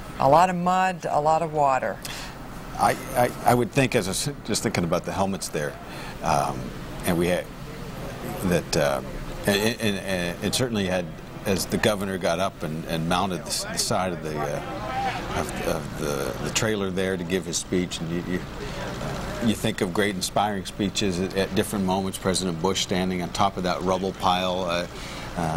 A lot of mud, a lot of water. I would think, as I was just thinking about the helmets there, and we had that, and it certainly had, as the governor got up and mounted the side of the trailer there to give his speech, and you think of great inspiring speeches at different moments. President Bush standing on top of that rubble pile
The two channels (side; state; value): both; identical; correlation 1.00